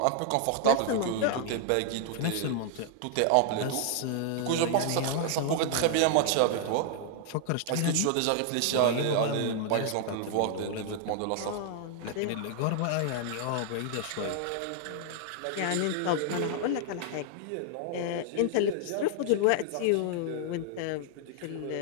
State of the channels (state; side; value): different; both; correlation 0.00